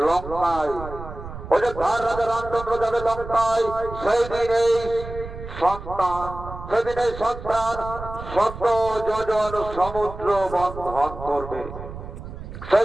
অযোধ্যার রাজা রামচন্দ্র যাবে লঙ্কায়। সেই দিন এই সন্তান, সেদিন এই সন্তান 100 যোজন সমুদ্র বন্ধন করবে।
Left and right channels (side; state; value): right; noise; rumble, 11 dB below the sound